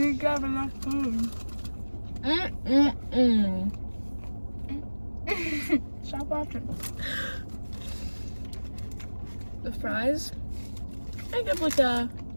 grab enough food. Stop watching. The fries, I give like a...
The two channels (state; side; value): inverted; both; correlation -1.00